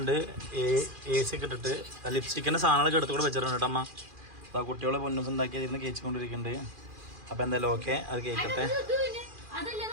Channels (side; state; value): left; late; 2.4 ms